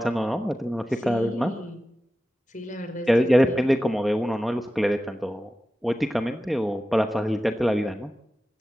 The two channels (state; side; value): normal; both; correlation 0.94